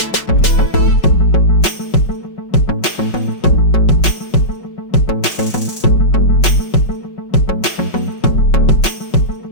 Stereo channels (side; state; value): right; late; 5.4 ms